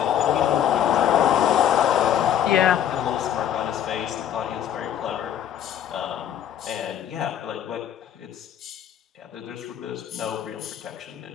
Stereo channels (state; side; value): quieter; right; 10.1 dB